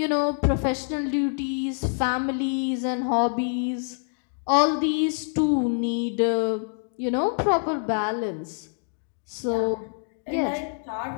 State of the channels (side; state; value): right; silent; 61 dB below the other